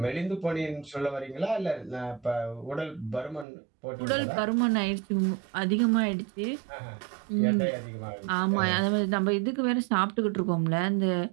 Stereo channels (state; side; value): drops out; left; at 3.5 s